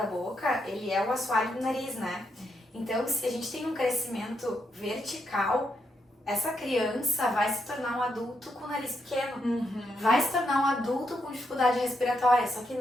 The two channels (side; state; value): both; normal; correlation 0.80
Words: boca, ele é o assoalho do nariz, né? Então, se a gente tem um crescimento vertical, essa criança vai se tornar um adulto com o nariz pequeno. Vai se tornar um adulto com dificuldade respiratória. Só que